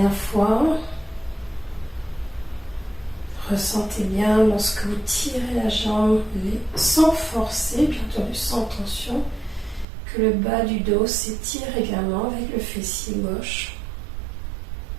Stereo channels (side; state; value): left; drops out; at 9.9 s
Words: fois. Ressentez bien lorsque vous tirez la jambe sans forcer, bien entendu sans tension, que le bas du dos s'étire également avec le fessier gauche.